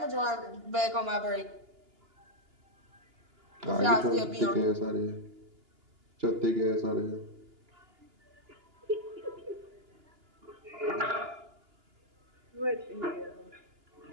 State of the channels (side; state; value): left; late; 2.9 ms